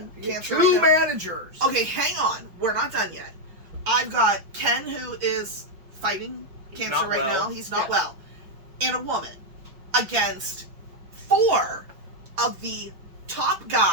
cancer. Two managers. Okay, hang on. We're not done yet. I've got Ken who is fighting cancer right now. He's not well. And a woman against 4 of the top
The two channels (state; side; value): late; left; 5.8 ms